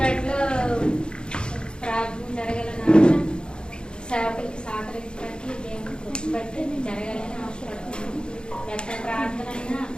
ప్రార్థన జరగాలని సేవకులకి సహకరించడానికి దేవుని గుర్తుపెట్టి జరగాలని ఆశపడుతున్నాను. ఎక్కడ ప్రార్థన అయినా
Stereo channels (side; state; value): right; late; 0.050 ms